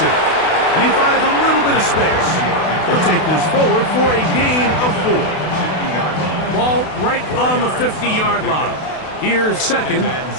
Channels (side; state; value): right; late; 32 ms